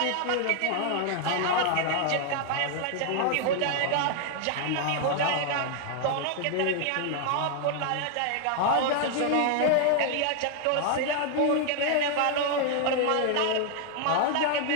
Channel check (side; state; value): both; different; correlation 0.00